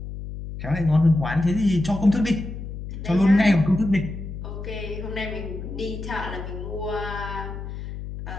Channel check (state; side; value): noise; left; hum, 8 dB below the sound